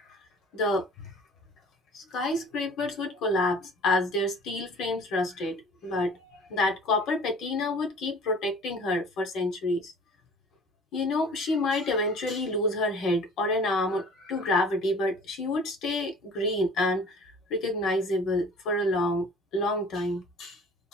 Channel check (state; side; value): normal; both; correlation 0.47